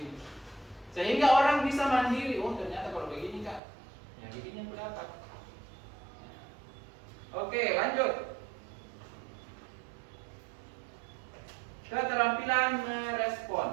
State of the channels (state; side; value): drops out; left; at 3.6 s